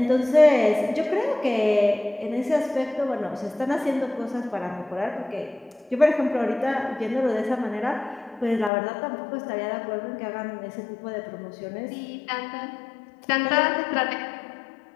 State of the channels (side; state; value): right; drops out; at 8.7 s